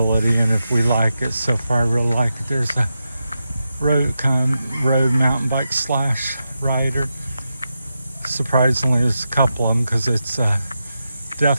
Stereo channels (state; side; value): inverted; both; correlation -0.88